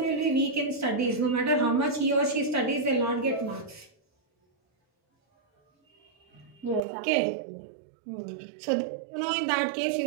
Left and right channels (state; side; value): drops out; left; at 6.8 s